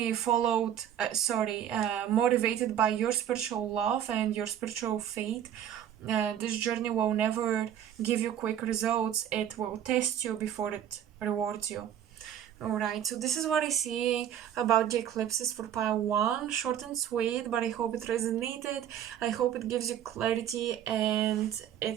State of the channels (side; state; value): left; quieter; 10.2 dB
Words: followed, motivated by your spiritual love and your spiritual faith. This journey will never give you quick results. It will test you before it rewards you. Alright, so this is what I see about the eclipses for pile 1. Short and sweet, but I hope it resonated. I hope it gives you clarity and